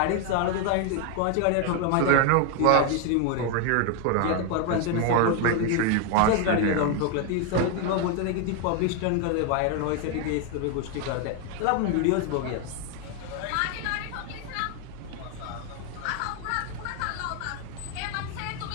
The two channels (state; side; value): different; both; correlation 0.01